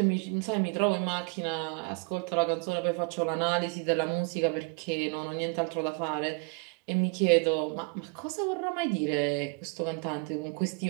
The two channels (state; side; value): quieter; left; 32.2 dB